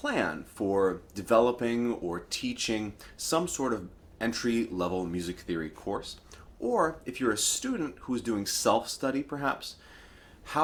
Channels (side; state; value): both; identical; correlation 1.00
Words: for developing or teaching some sort of entry-level music theory course, or if you're a student who's doing self-study perhaps,